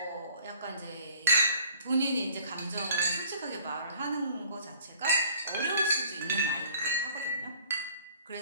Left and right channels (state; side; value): inverted; both; correlation -0.53